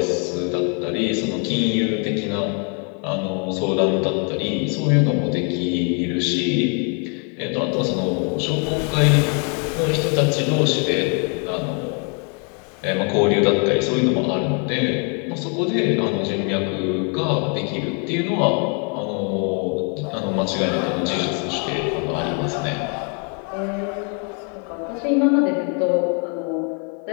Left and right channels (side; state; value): right; quieter; 38.6 dB